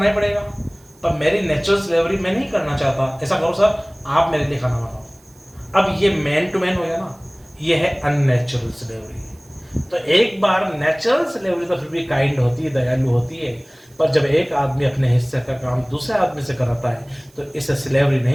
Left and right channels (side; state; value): right; noise; hiss, 30 dB below the sound